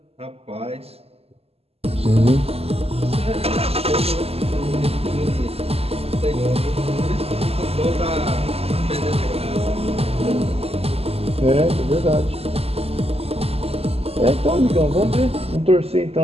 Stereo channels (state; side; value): late; left; 0.29 ms